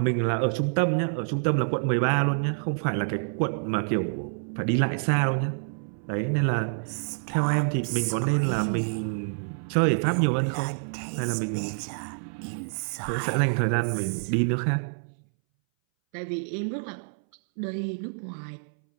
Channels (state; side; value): silent; left; 60 dB below the other